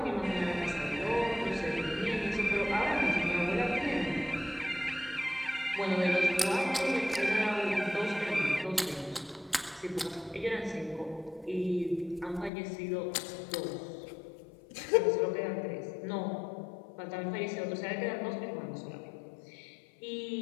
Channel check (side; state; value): right; drops out; at 12.5 s